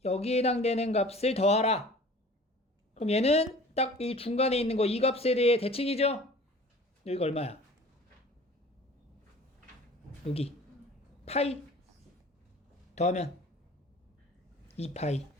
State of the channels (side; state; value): both; normal; correlation 0.45